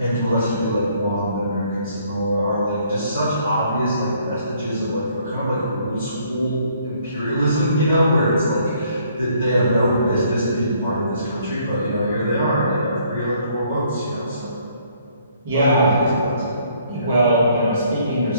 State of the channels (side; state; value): both; inverted; correlation -0.64